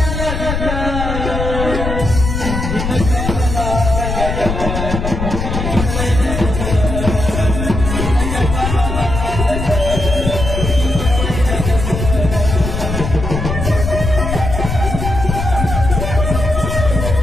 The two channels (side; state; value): left; noise; rumble, 3 dB below the sound